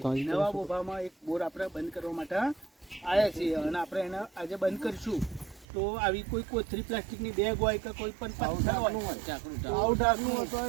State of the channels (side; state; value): left; drops out; at 5.7 s